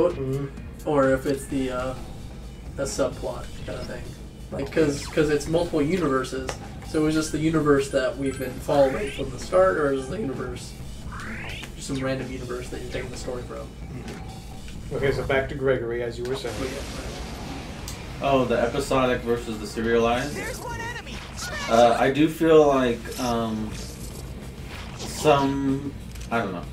or if it's the a subplot kind of thing. Like, because it's multiple universes, so is this the universe that we've been following from the start, or is the universe just some random universe that you're taking the story from? Okay, so back to Gregory, as you were saying. Oh, the episodic versus the serialized? I do feel like I don't know.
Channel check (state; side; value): identical; both; correlation 1.00